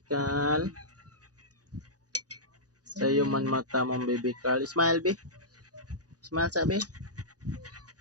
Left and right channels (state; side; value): late; left; 0.68 ms